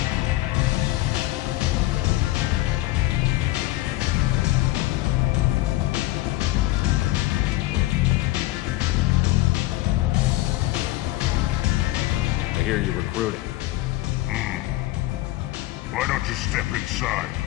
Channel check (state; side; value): quieter; right; 17.4 dB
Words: I hear you're recruiting. Why don't you step inside?